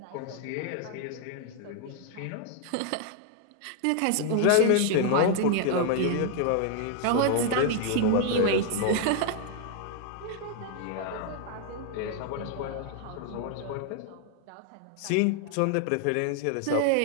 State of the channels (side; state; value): both; different; correlation 0.00